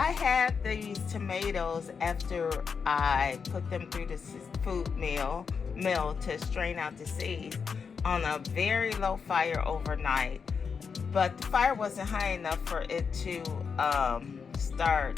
had these tomatoes after I put them through the food mill to strain out the seeds on a very low fire overnight. But the fire wasn't high enough for it to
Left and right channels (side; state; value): right; quieter; 5.9 dB